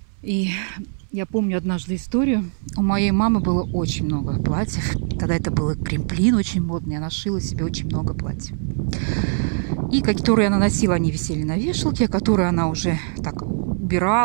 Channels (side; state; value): left; silent; 64 dB below the other